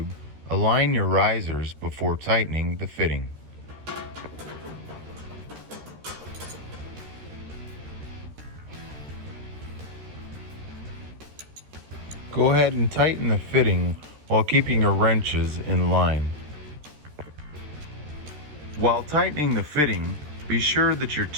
align your risers before tightening the fitting. Go ahead and tighten the fitting while keeping your wrenches in line. While tightening the fitting, be sure that your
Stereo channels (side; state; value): left; late; 13 ms